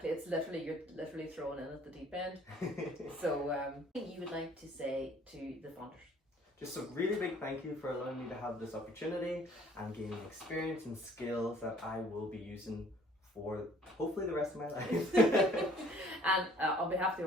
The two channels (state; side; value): normal; both; correlation 0.57